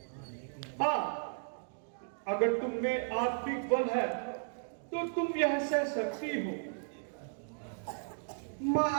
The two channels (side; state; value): left; silent; digital silence